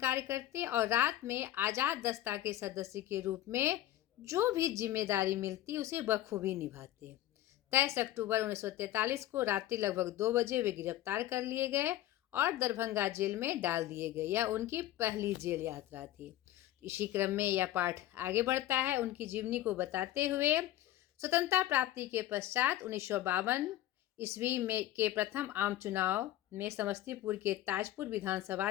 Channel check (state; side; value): quieter; right; 14.0 dB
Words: करते और रात में आजाद दस्ता के सदस्य के रूप में जो भी जिम्मेदारी मिलती उसे बखूबी निभाते। 23 अक्टूबर 1943 को रात्रि लगभग 2 बजे वे गिरफ्तार कर लिए गए और दरभंगा जेल में डाल दिए गए। यह उनकी पहली जेल यात्रा थी। इसी क्रम में यह पाठ आगे बढ़ता है उनकी जीवनी को बताते हुए। स्वतंत्रता प्राप्ति के पश्चात 1952 ईस्वी में के प्रथम आम चुनाव में समस्तीपुर के ताजपुर विधानसभा